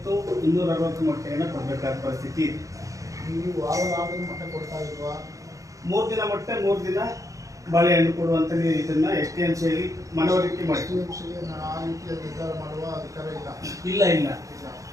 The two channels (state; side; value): late; left; 0.16 ms